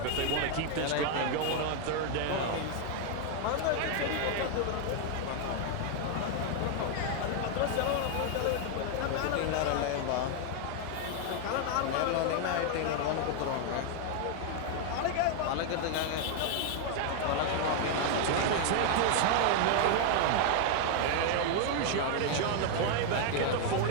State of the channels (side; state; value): both; different; correlation 0.00